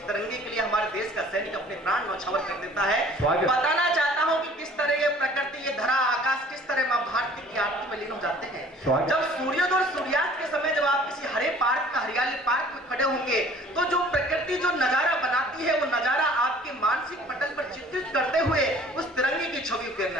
तिरंगे के लिए हमारे देश का सैनिक अपने प्राण न्यौछावर कर देता है। बताना चाहता हूं कि किस तरह ये प्रकृति, ये धरा, आकाश किस तरह मां भारती की आरती में लीन हो जाते हैं। जब सूर्योदय और सूर्यास्त के समय जब आप किसी हरे पार्क का, हरियाली पार्क में खड़े होंगे तो जो प्रकृति जो नजारा बनाती है वो नजारा आपके मानसिक पटल पर चित्रित करते हुए उस तिरंगे की छवि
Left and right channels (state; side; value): normal; both; correlation 0.51